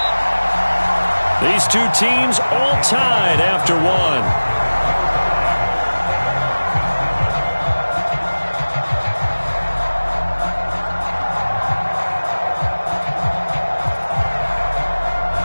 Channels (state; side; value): inverted; both; correlation -1.00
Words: These two teams all tied after one.